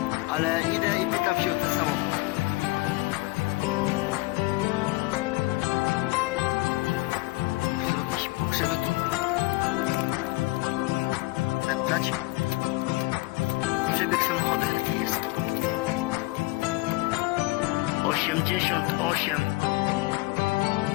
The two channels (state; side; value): quieter; right; 21.7 dB